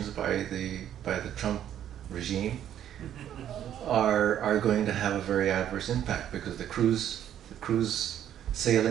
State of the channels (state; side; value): quieter; left; 10.6 dB